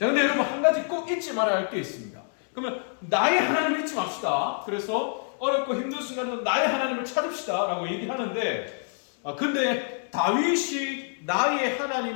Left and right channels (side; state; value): right; silent; 60 dB below the other